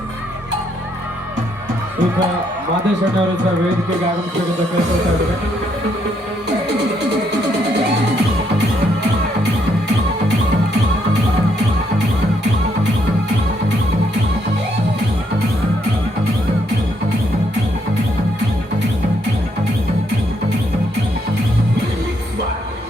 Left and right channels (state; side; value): normal; both; correlation 0.73